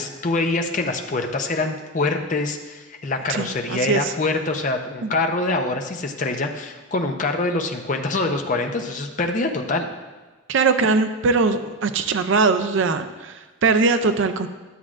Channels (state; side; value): normal; both; correlation 0.13